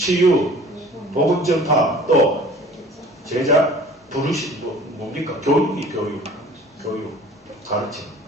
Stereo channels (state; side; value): normal; both; correlation 0.47